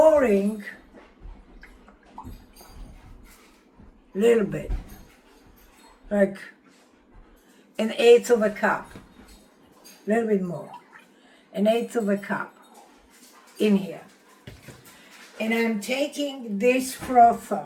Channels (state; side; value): identical; both; correlation 1.00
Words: a little bit, like 1/8 of a cup, a little bit more, 1/8 of a cup in here. And I'm taking this frother,